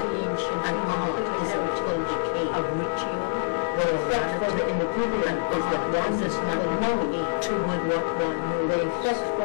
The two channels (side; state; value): right; silent; 61 dB below the other